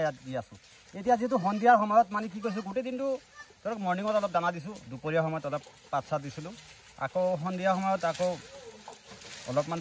দি আছোঁ। এতিয়া যিহেতু সন্ধিয়াৰ সময়ত মানে কি কৈছোঁ, গোটেই দিনটো ধৰক মৰ্ণিঙত অলপ দানা দিছোঁ, দুপৰীয়া সময়ত অলপ পাত চাত দিছিলোঁ, আকৌ সন্ধিয়া সময়ত আকৌ অলপমান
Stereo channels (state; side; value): identical; both; correlation 1.00